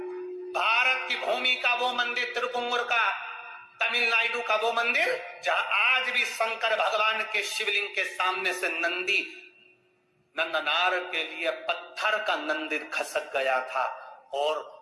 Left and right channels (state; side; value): identical; both; correlation 1.00